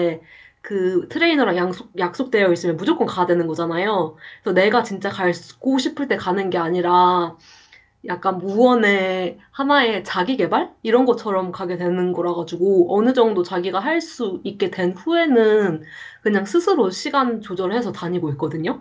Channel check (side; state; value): both; identical; correlation 1.00